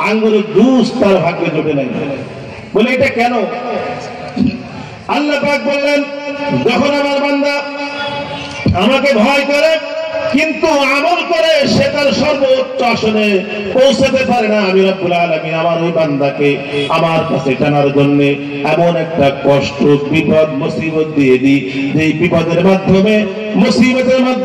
আঙ্গুরের জুস তার ভাগ্যে জোটে নাই। বলে এটা কেন? আল্লাহ পাক বললেন, যখন আমার বান্দা আমাকে ভয় করে কিন্তু আমল করে, সে তার সর্বোচ্চ আসনে পৌঁছাতে পারে না, আমি রব্বুল আলামিন আমার ওই বান্দাকে আমার কাছে টানার জন্য এমন একটা কষ্ট, বিপদ, মুসিবত দিয়ে দিই, যে বিপদের মাধ্যমে, মুসিবতের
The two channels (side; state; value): both; identical; correlation 1.00